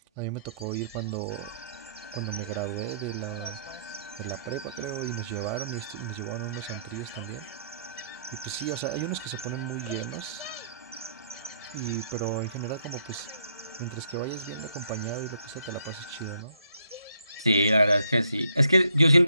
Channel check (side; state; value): both; inverted; correlation -0.71